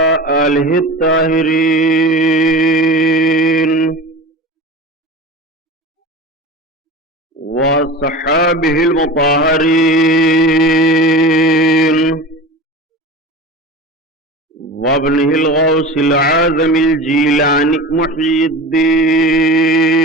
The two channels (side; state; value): both; normal; correlation 0.32